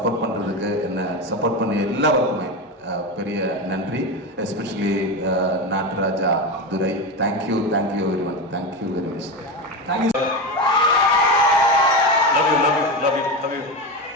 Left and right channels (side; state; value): both; normal; correlation 0.18